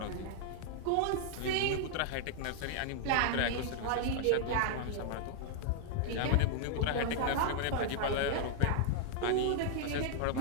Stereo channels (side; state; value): both; different; correlation -0.01